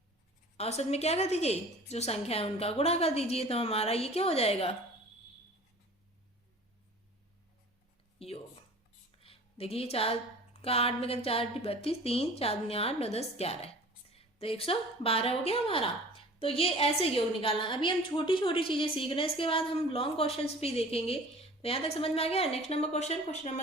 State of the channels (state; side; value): normal; both; correlation 0.44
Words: औसत में क्या कर दीजिए? जो संख्या है उनका गुणा कर दीजिए। तो हमारा ये क्या हो जाएगा? योग। देखिए 4 का 8 में कर 4 × 32, 3 4 × 8 9 10 11, तो 112 हो गया हमारा। तो ये ऐसे योग निकालना। अभी हम छोटी छोटी चीजें सीख रहे हैं, इसके बाद हम लॉन्ग क्वेश्चंस भी देखेंगे। तो यहाँ तक समझ में आ गया। Next number question, question